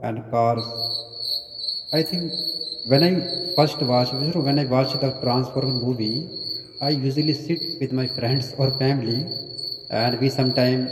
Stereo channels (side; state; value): both; identical; correlation 1.00